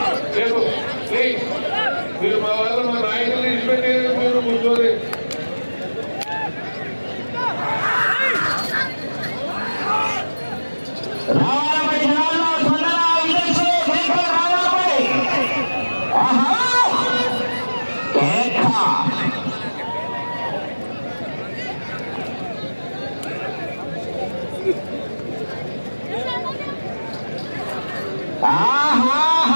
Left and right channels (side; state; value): both; inverted; correlation -1.00